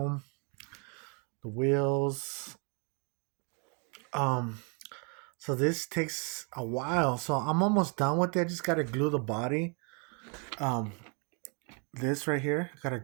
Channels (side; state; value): left; quieter; 36.0 dB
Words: The wheels. Um, so this takes a while. So I'm almost done with it. I just gotta glue the body. Um, this right here, gotta